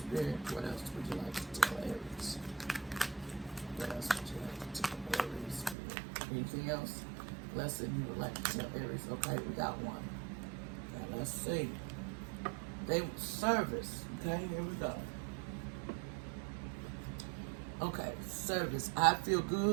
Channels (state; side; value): drops out; left; at 5.8 s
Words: What else would you like to tell Aries? What else would you like to tell Aries spirit? Anything else? Lesson you would like to tell Aries? Okay, we got one. Now let's see. Service. Okay, here we go. Okay, service. I feel